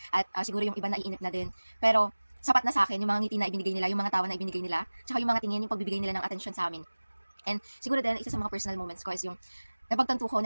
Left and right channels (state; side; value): inverted; both; correlation -1.00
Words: at siguro yung iba naiinip na din. Pero sapat na sa akin yung mga ngiti na ibinigay nila, yung mga tawa na ibinigay nila, tsaka yung mga tingin, yung pagbibigay nila ng atensyon sa amin. And siguro din, isa sa mga personal moments ko is yung napagtanto ko